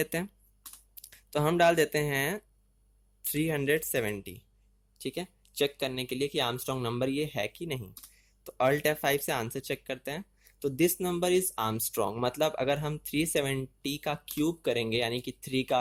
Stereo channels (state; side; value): identical; both; correlation 1.00